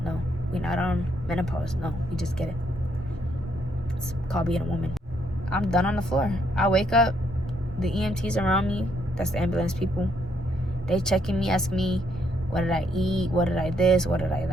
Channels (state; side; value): normal; both; correlation 0.73